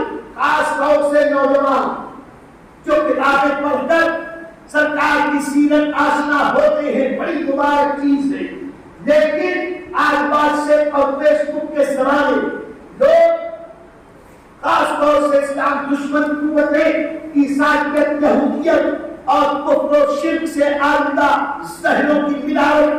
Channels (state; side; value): identical; both; correlation 1.00